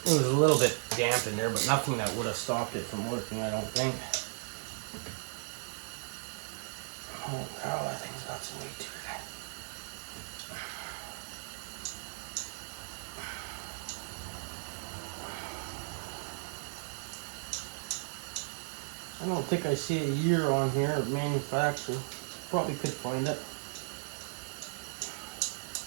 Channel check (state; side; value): silent; left; digital silence